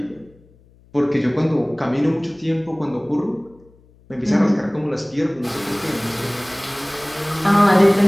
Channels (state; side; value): noise; left; hum, 29 dB below the sound